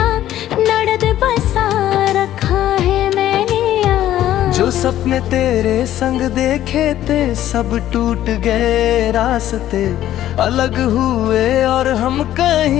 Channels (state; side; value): quieter; right; 12.7 dB